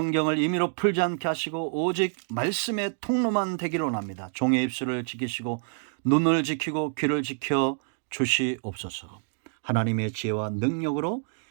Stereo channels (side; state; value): left; silent; digital silence